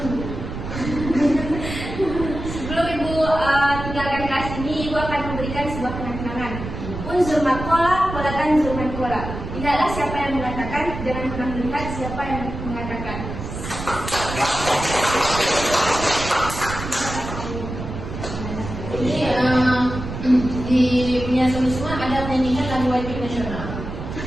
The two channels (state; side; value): noise; right; rumble, 7 dB below the sound